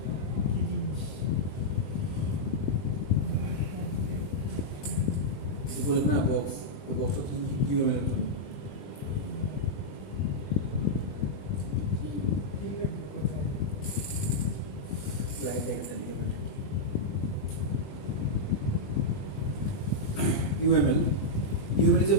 কি জিনিস যে বলেন না বক্স ওই বক্সটা কি ইউএমএল এর জন্য কি লিখবো কোথায় স্লাইড দেখতে লিখবেন UML is a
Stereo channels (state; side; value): late; right; 20 ms